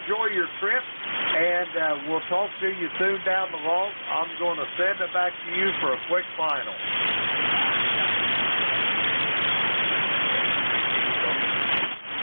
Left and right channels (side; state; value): both; inverted; correlation -1.00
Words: your trip, and we'll talk to you soon down the road. I'm going to send it back to you for a quick final.